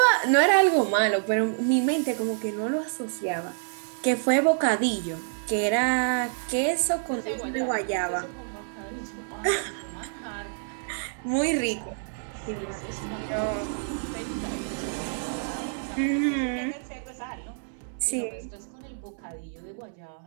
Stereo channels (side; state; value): left; silent; 60 dB below the other